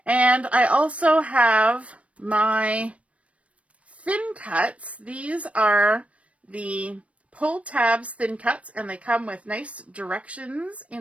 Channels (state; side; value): late; left; 0.064 ms